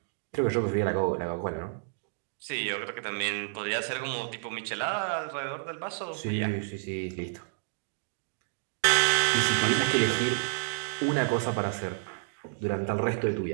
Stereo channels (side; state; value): left; silent; digital silence